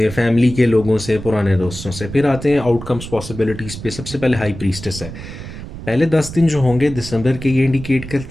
फैमिली के लोगों से, पुराने दोस्तों से। फिर आते हैं आउटकम्स पॉसिबिलिटीज़ पे। सबसे पहले हाई प्रीस्टेस है। पहले 10 दिन जो होंगे दिसंबर के, ये इंडिकेट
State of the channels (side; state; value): right; noise; rumble, 11 dB below the sound